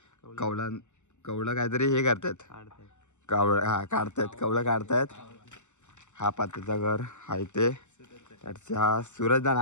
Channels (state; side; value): late; right; 0.84 ms